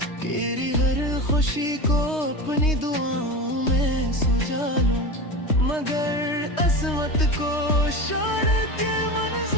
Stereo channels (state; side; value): late; right; 3.2 ms